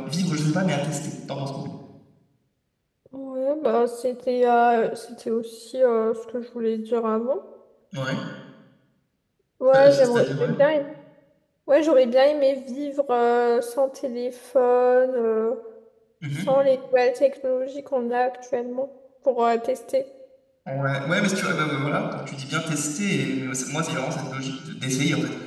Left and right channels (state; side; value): identical; both; correlation 1.00